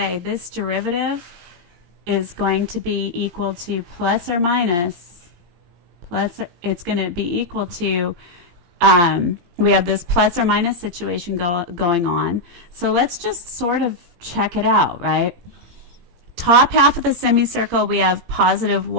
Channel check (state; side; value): late; left; 17 ms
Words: this derivative is going to be equal to plus or minus, it's going to be equal to, we have this plus or minus situation going on. So let's just sort of check it out, right? Top half of the semicircle, we have positive